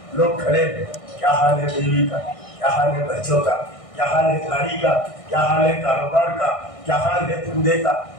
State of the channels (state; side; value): late; right; 1.6 ms